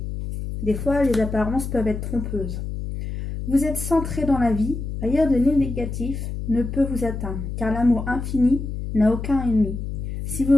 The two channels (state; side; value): noise; left; hum, 6 dB below the sound